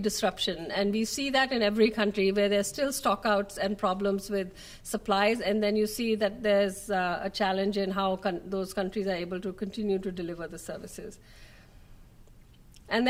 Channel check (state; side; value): identical; both; correlation 1.00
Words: disruption, and we see that in every country where there's still stockouts and problems with supplies, and then you see that there's a challenge in how those countries are able to continue to deliver the services. And